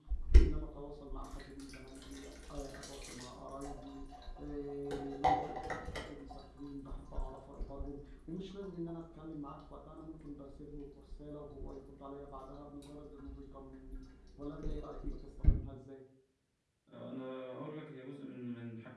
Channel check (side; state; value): both; identical; correlation 1.00